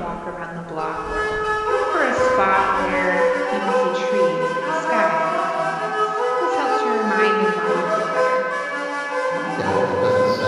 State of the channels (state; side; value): identical; both; correlation 1.00